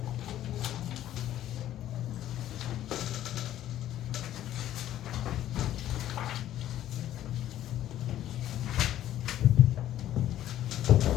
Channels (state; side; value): quieter; right; 12.5 dB